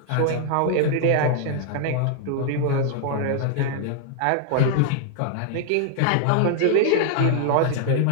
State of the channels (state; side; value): different; both; correlation 0.00